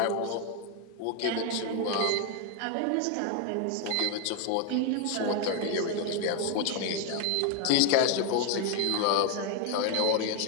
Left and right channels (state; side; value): different; both; correlation 0.01